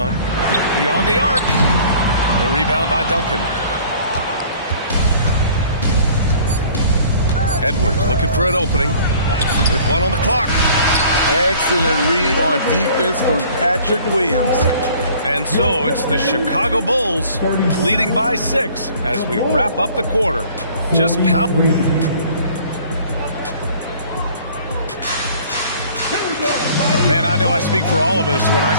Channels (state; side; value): inverted; both; correlation -0.52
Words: Beyond the arc. The rebound by Duncan. Edwards looking for an opening with 1 on the clock. Excellent read on defense from Patrick Williams. And so it's the Chicago Bulls leading by 6 as we wrap up the quarter. just pound. Man, I know I speak for all of us when I